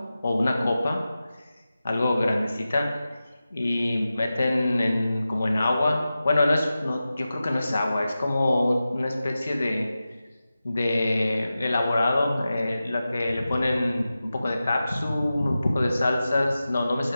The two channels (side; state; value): both; inverted; correlation -0.94